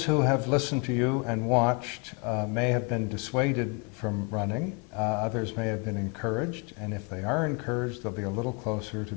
who have listened to you and watched may have been dissuaded from running. Others may have been encouraged, and if they are encouraged, they'll be a little closer to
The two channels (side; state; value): right; quieter; 32.6 dB